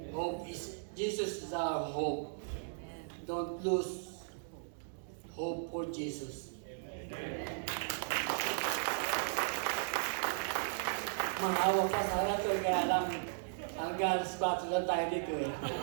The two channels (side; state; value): left; silent; digital silence